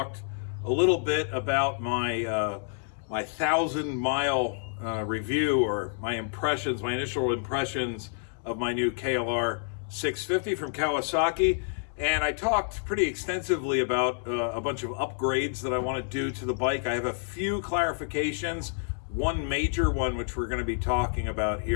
a little bit about my 1,000-mile review, or my initial impressions of my new KLR 650 from Kawasaki. And I talked pretty extensively about a bunch of upgrades that I want to do to the bike. I have a few clarifications. One major one, which we're going to be talking about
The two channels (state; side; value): silent; right; digital silence